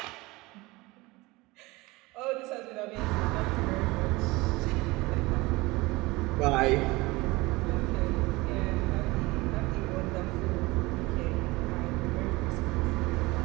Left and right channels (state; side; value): quieter; left; 22.0 dB